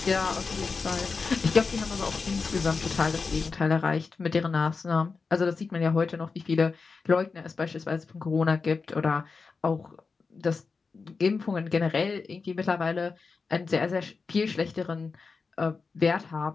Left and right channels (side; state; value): right; quieter; 4.6 dB